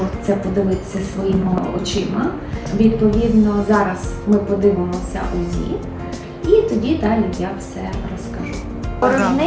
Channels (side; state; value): both; identical; correlation 1.00